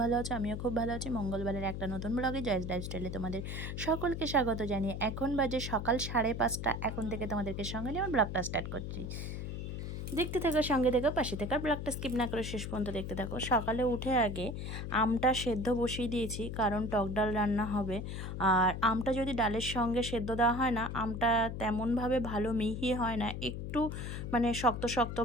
ভালো আছো। আমিও খুব ভালো আছি। মঙ্গলবারের একটা নতুন ব্লগে জয়েস লাইফস্টাইলে তোমাদের সকলকে স্বাগত জানিয়ে এখন বাজে সকাল 5:30। এখন থেকে তোমাদেরকে সঙ্গে নিয়ে আমার ব্লগটা স্টার্ট করছি। দেখতে থাকো, সঙ্গে থেকো, পাশে থেকে ব্লগটা স্কিপ না করে শেষ পর্যন্ত দেখতে থাকো। সকালে উঠে আগে আমটা সেদ্ধ বসিয়ে দিয়েছি, কারণ টক ডাল রান্না হবে। আর আমটা যদি ডালের সঙ্গে সেদ্ধ দেওয়া হয় না, আমটা তেমনভাবে ভালো মিহি হয় না, একটু মানে শক্ত শক্ত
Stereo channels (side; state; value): left; noise; hum, 5 dB below the sound